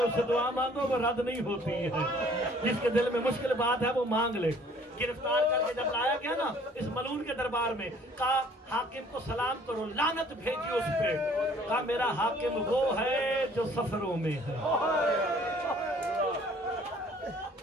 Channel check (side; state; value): both; normal; correlation 0.56